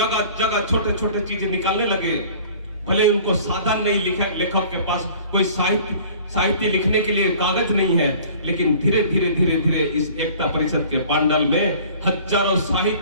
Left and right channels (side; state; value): both; inverted; correlation -0.48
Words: जगह छोटे छोटे चीजें निकालने लगे। भले उनको साधन नहीं, लेखक के पास कोई साहित्य लिखने के लिए कागज नहीं है, लेकिन धीरे धीरे धीरे धीरे इस एकता परिषद के पांडल में हजारों